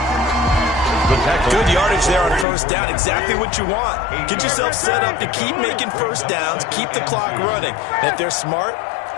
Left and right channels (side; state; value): right; drops out; at 2.5 s